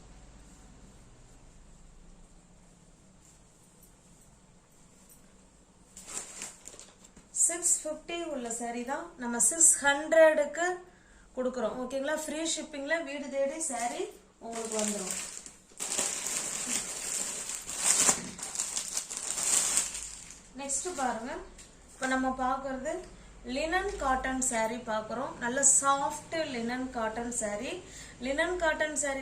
$650 உள்ள saree தான் நம்ம 600க்கு கொடுக்குறோம். ஓகேங்களா? ஃப்ரீ ஷிப்பிங்ல வீடு தேடி saree உங்களுக்கு வந்துடும். நெக்ஸ்ட் பாருங்க, இப்போ நம்ம பார்க்கறது லினன் காட்டன் saree பார்க்குறோம். நல்ல soft linen cotton saree. Linen cotton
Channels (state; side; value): identical; both; correlation 1.00